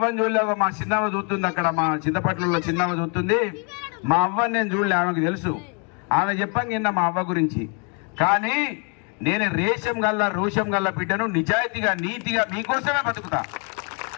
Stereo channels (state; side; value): quieter; right; 36.1 dB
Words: చూడలే. మా చిన్నమ్మ చూస్తుంది అక్కడ, మా చింతపట్లలో చిన్నమ్మ చూస్తుంది. మా అవ్వని నేను చూడలే, ఆమెకు తెలుసు. ఆమె చెప్పాను నిన్న మా అవ్వ గురించి. కానీ నేను రేషం గల్లా రోషం గల్లా బిడ్డను, నిజాయితీగా నీతిగా మీకోసమే బతుకుతా.